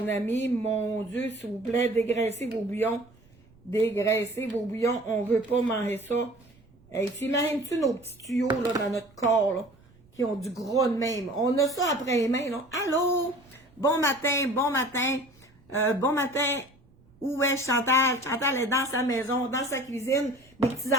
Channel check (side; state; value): right; noise; rumble, 29 dB below the sound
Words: ami, mon Dieu, s'il vous plaît, dégraissez vos bouillons. Dégraissez vos bouillons. On veut pas manger ça. Hey, t'imagines-tu nos petits tuyaux là, dans notre corps, là, qui ont du gras de même? On a ça après les mains, là. Allô? Bon matin, bon matin. Bon matin. Où est Chantal? Chantal est dans sa maison, dans sa cuisine. Mes